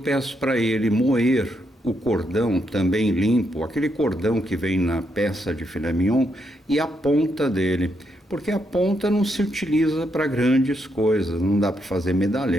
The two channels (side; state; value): both; normal; correlation 0.79